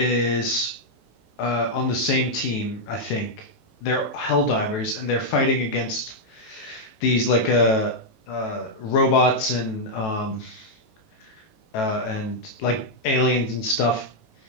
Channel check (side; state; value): right; late; 18 ms